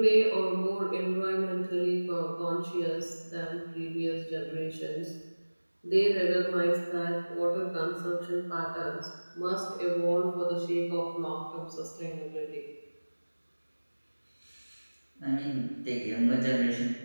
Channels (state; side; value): inverted; both; correlation -1.00